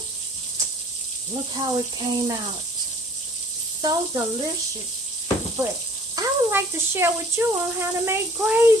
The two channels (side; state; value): both; normal; correlation 0.52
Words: Look how it came out. So delicious. But I would like to share with you on how to make